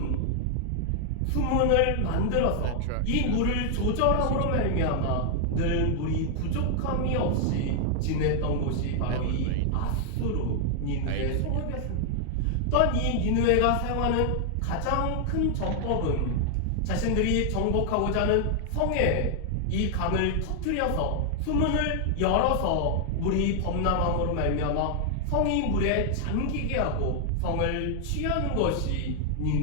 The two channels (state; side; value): different; both; correlation 0.00